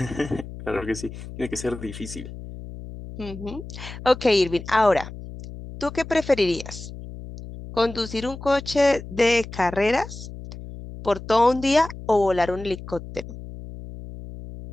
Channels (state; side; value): noise; left; hum, 12 dB below the sound